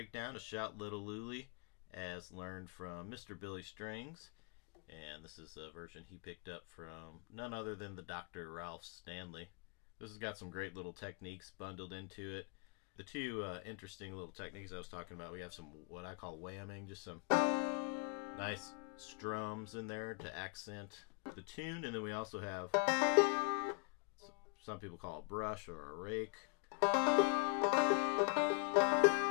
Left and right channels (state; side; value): quieter; right; 37.0 dB